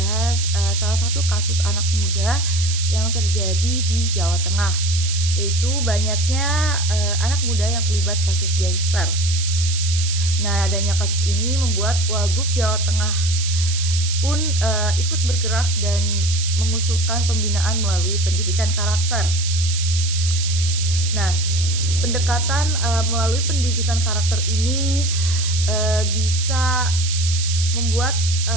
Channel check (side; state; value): right; noise; hiss, 5 dB below the sound